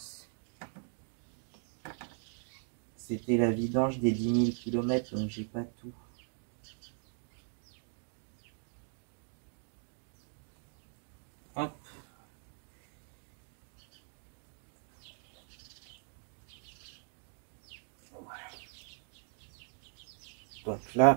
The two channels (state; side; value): silent; left; 52 dB below the other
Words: C'était la vidange des 10 000 km, donc j'ai pas tout. Hop. Donc